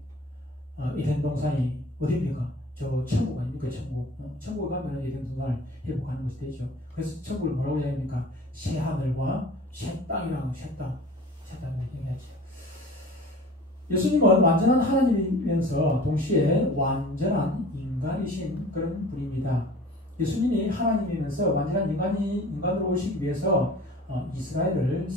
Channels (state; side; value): normal; both; correlation 0.44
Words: 에덴 동산이 어디입니까? 저 천국 아닙니까? 천국 가면 에덴 동산을 회복하는 것이 되죠. 그래서 천국을 뭐라고 얘기합니까? 새 하늘과 새 땅이라고 새 땅을 얘기하죠. 예수님은 완전한 하나님이면서 동시에 완전한 인간이신 그런 분입니다. 예수님이 하나님이면서 완전한 인간으로 오시기 위해서 이스라엘을